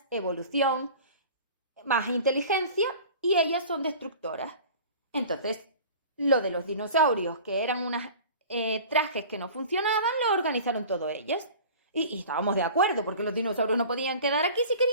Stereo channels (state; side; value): inverted; both; correlation -0.41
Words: evolución, más inteligencia, y ellas son destructoras. Entonces, lo de los dinosaurios, que eran unos trajes que no funcionaban, lo organizaron todo ellas. Y estábamos de acuerdo, porque los dinosaurios no podían quedar aquí si